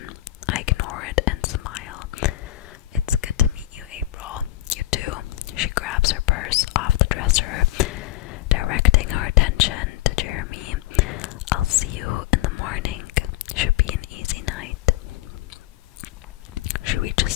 I ignore it and smile. It's good to meet you, April. You too. She grabs her purse off the dresser, directing her attention to Jeremy. I'll see you in the morning. Should be an easy night. She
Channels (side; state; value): right; quieter; 15.5 dB